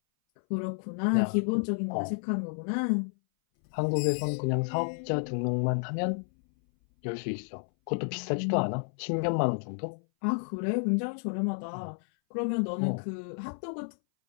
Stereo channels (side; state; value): right; silent; 57 dB below the other